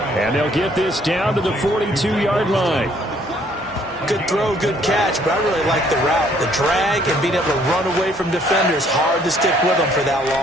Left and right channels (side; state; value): both; normal; correlation 0.63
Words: And they'll get this down to the 42-yard line. Good throw, good catch, but I really like the route. The drag and being able to run away from defenders. Hard to stick with them for that